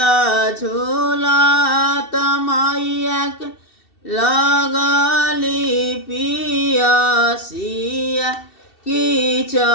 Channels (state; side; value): late; right; 2.7 ms